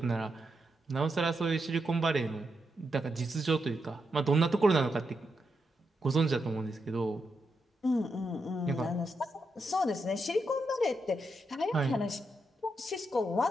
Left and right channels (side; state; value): both; normal; correlation 0.84